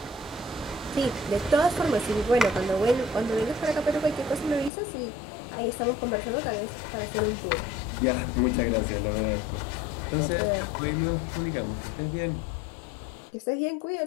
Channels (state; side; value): drops out; right; at 4.7 s